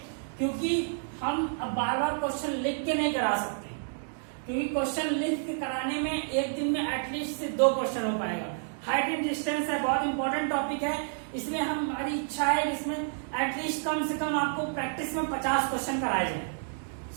क्योंकि हम अब बार बार क्वेश्चन लिख के नहीं करा सकते, क्योंकि क्वेश्चन लिख के कराने में एक दिन में एटलीस्ट से 2 क्वेश्चन हो पाएगा। हाइट एंड डिस्टेंस है, बहुत इंपॉर्टेंट टॉपिक है, इसलिए हमारी इच्छा है इसमें एटलीस्ट कम से कम आपको प्रैक्टिस में 50 क्वेश्चन कराए जाए।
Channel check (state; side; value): silent; left; digital silence